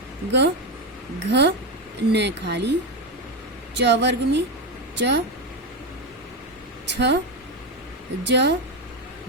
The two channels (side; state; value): both; normal; correlation 0.12